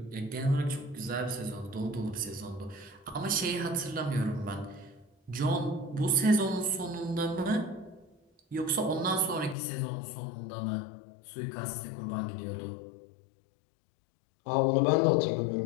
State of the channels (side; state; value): right; drops out; at 9.6 s